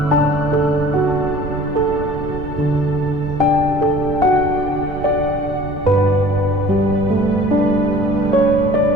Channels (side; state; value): right; noise; rumble, 10 dB below the sound